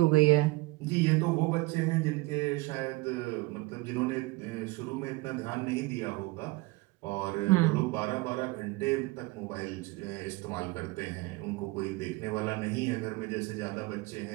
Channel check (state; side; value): quieter; left; 22.4 dB